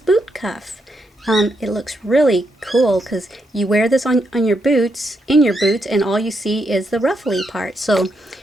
cuff. It looks really cool because you wear this on your boots, and all you see is the ruffly part. So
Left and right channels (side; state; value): both; normal; correlation 0.80